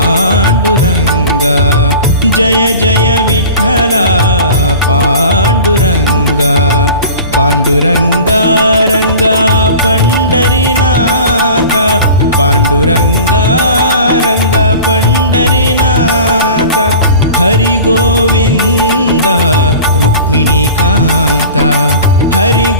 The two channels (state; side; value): inverted; both; correlation -0.40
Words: जय जय विठ्ठला पांडुरंगा पांडुरंगा रंगा पंढरीनाथ पांडुरंगा रंगा पंढरीनाथ हरि गोविंद रुक्मिणीकांत हरि